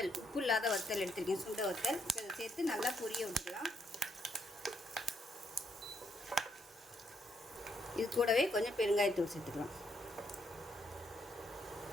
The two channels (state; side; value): normal; both; correlation 0.75